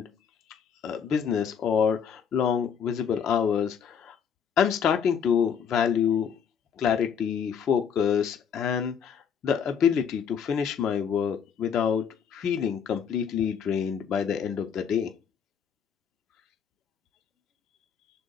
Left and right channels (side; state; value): right; quieter; 7.4 dB